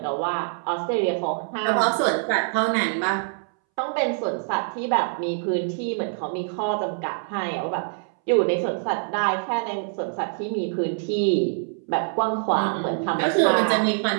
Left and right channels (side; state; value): left; silent; 62 dB below the other